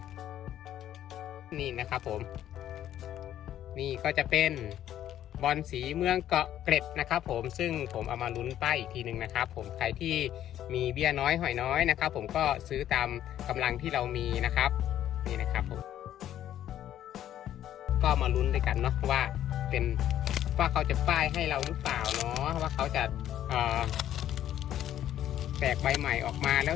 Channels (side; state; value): right; quieter; 11.5 dB